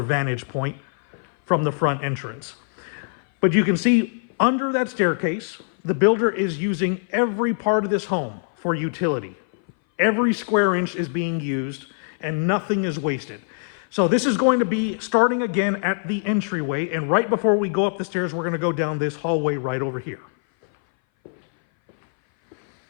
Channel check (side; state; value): right; silent; 59 dB below the other